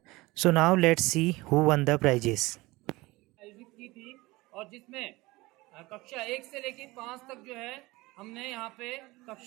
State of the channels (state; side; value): quieter; left; 21.1 dB